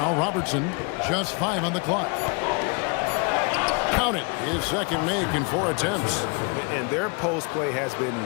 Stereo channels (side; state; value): right; quieter; 33.0 dB